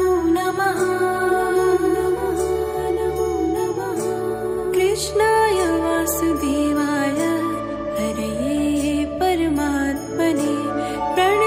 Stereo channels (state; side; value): identical; both; correlation 1.00